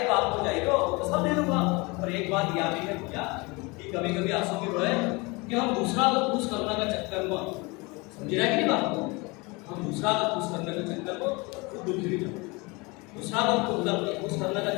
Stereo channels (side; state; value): right; quieter; 26.3 dB